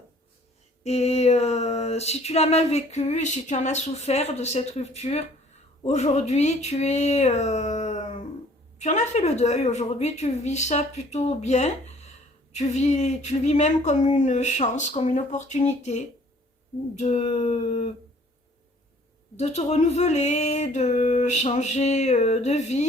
Et si tu l'as mal vécu, si tu en as souffert de cette rupture, aujourd'hui tu en as fait le deuil. Aujourd'hui, tu vis ça plutôt bien. Tu le vis même comme une chance, comme une opportunité de, de te renouveler, de changer de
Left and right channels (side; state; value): both; normal; correlation 0.56